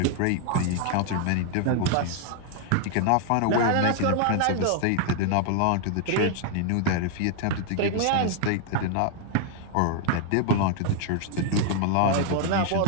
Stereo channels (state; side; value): different; both; correlation 0.00